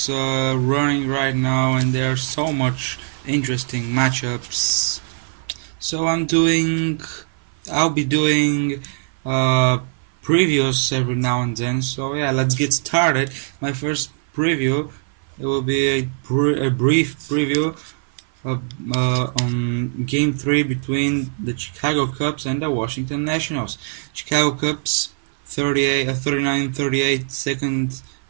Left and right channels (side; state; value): left; silent; 56 dB below the other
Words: running right now, and there are so much interesting matchups. So I'll be doing previews every now and then. So yeah, let's get started. My first preview, it will be a brief preview on Game 3 between the Chicago Cubs and the Washington Nationals. Chicago Cubs 39-38 second